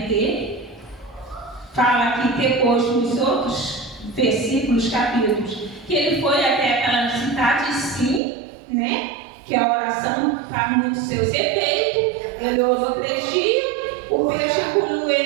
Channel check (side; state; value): left; drops out; at 8.2 s